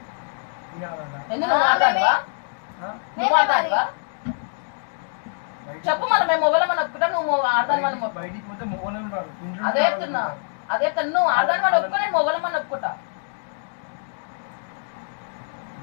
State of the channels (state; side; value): silent; right; digital silence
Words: నువ్వు మాట్లాడవా? చెప్పు మనం మేము మొగలమని ఒప్పుకుంటా నువ్వు ఆడదాని అదే చెప్తున్నా నువ్వు ఆడదాని మనం ఒప్పుకో నేను మొగలమని ఒప్పుకుంటా.